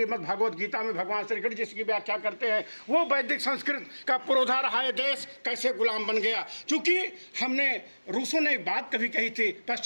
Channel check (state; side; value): inverted; both; correlation -1.00